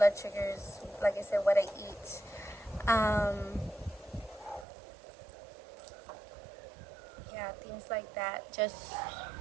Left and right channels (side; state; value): left; drops out; at 4.7 s